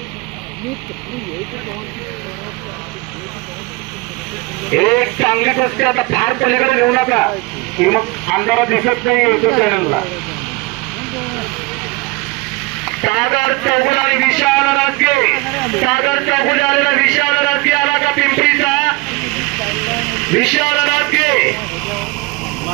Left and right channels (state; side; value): quieter; left; 24.3 dB